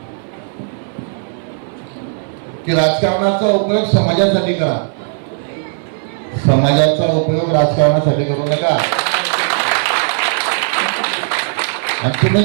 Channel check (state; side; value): silent; left; 59 dB below the other